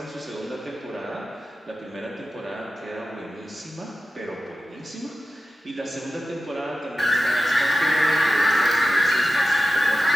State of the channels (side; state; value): both; normal; correlation 0.91